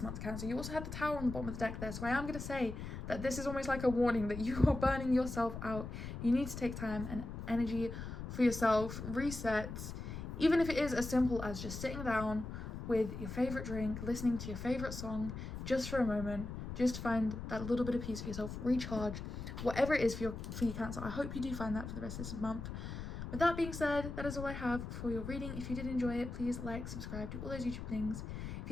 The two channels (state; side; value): noise; left; rumble, 7 dB below the sound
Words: month, Cancer. You also had the Tower on the bottom of the deck there, so I am going to say that this is almost like a warning that you are burning yourself out. You need to take time and energy for yourself, reset, even if it is as simple as just sitting down with your favourite drink, listening to your favourite song, just for a moment, just find that little bit of peace for yourself, recharge, whatever it is for you, Cancer. I hope you do find that for the rest of this month. With that being said, that is all I have for your reading. If you did enjoy it, please like, subscribe, do all those YouTube things. If